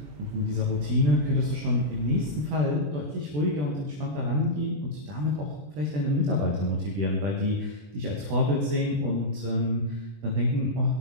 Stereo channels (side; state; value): left; late; 20 ms